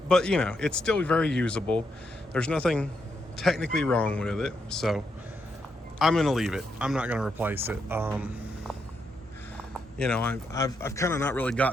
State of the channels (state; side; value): normal; both; correlation 0.81